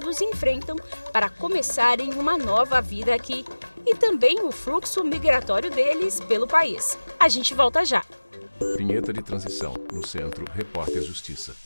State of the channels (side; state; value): both; inverted; correlation -1.00